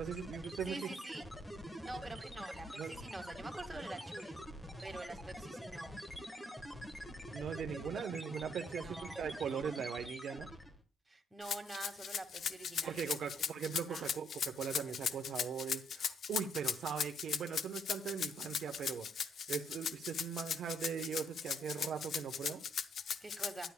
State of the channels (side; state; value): both; normal; correlation 0.70